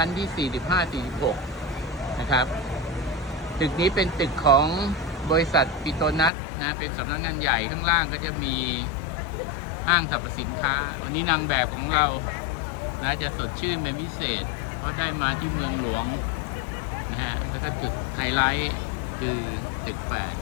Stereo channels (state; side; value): drops out; right; at 6.3 s